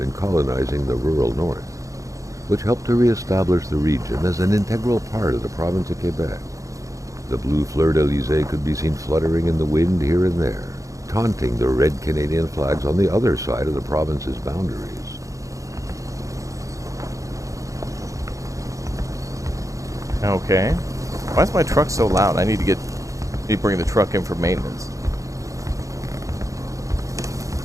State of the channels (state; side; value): late; left; 0.16 ms